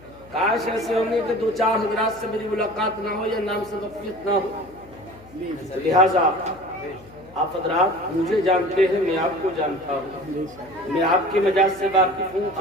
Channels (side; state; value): left; noise; hum, 23 dB below the sound